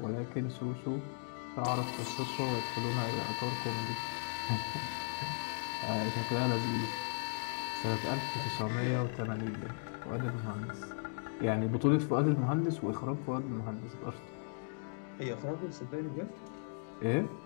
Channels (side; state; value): right; silent; digital silence